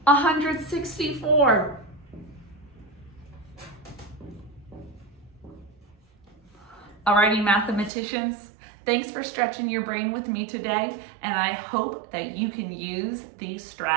164. Alrighty, mathematicians, Thanks for stretching your brain with me today, and I hope that you can use these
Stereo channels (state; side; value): drops out; left; at 7.9 s